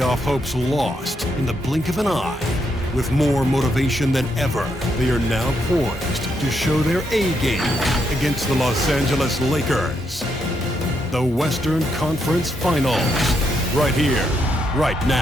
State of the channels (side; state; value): both; normal; correlation 0.79